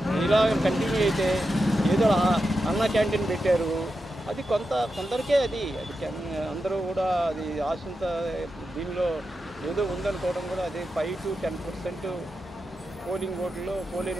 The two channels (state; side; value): normal; both; correlation 0.89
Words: ఇలా కంటిన్యూ అయితే ఏదో అన్న క్యాంటీన్ పెట్టారు, అది కొందరికే అది అందరూ కూడా అది ఆశంత దీనిలో ఏదో ఉందనుకోవడం కూడా అది 5 to 10% పోలింగ్